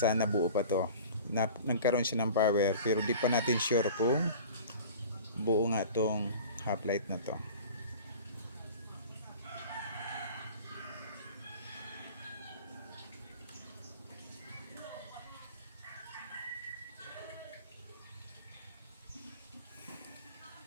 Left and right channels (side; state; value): both; inverted; correlation -0.41